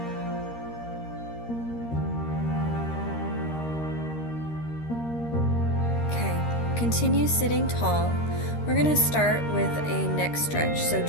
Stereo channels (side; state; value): right; late; 13 ms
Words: Okay, continue sitting tall. We're going to start with a neck stretch. So